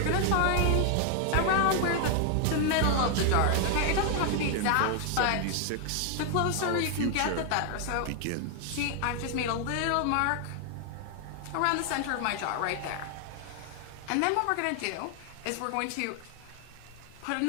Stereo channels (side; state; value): both; different; correlation 0.00